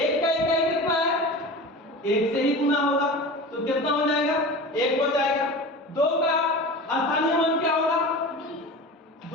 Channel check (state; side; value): normal; both; correlation 0.33